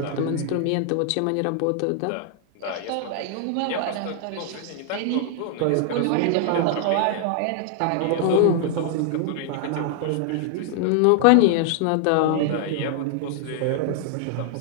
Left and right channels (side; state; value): both; different; correlation 0.00